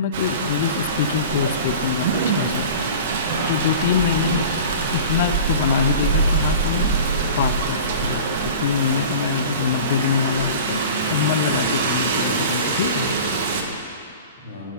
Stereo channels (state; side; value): inverted; both; correlation -0.38